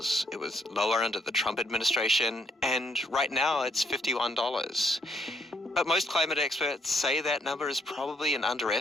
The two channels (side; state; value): both; normal; correlation 0.71